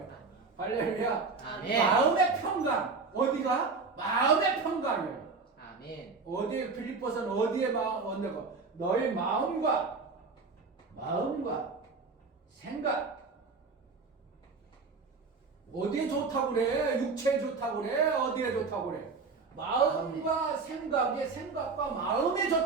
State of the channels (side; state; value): left; quieter; 4.4 dB